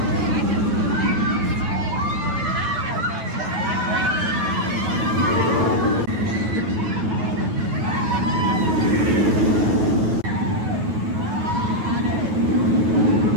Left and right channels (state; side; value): late; left; 9.4 ms